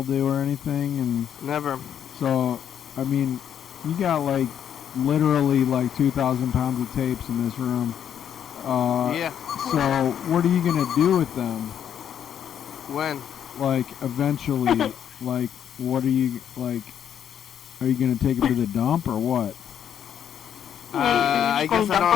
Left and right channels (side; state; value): right; quieter; 9.1 dB